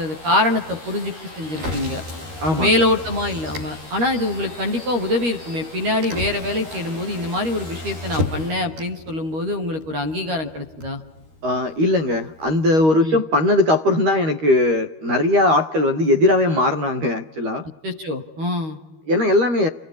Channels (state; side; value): late; left; 13 ms